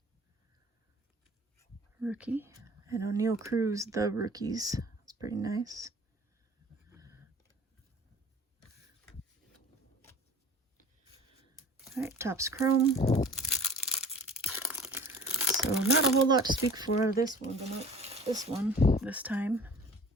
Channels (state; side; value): normal; both; correlation 0.45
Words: rookie. And O'Neal Cruz, the rookies. That's pretty nice. All right, Topps Chrome. So not a whole lot to speak for out of this one, but not this time.